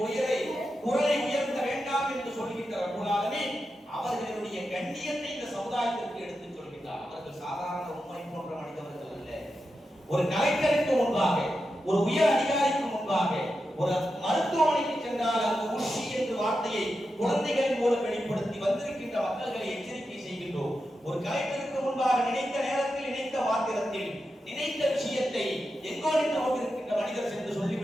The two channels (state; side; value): normal; both; correlation 0.89